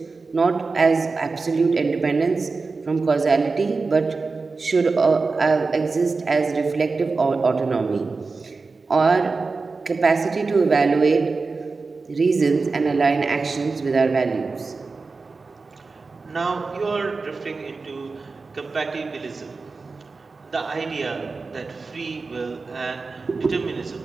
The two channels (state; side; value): quieter; left; 4.1 dB